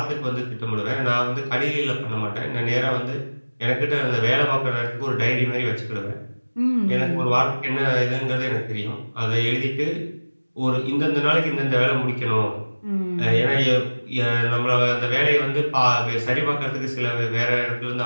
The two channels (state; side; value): inverted; both; correlation -1.00